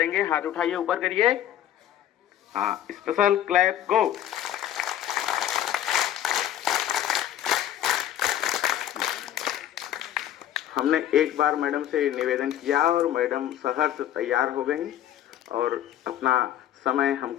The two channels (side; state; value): right; quieter; 11.6 dB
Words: हाथ उठाइए, ऊपर करिए। हाँ, स्पेशल क्लैप गो। हमने एक बार मैडम से निवेदन किया और मैडम सहर्ष तैयार हो गई और अपना समय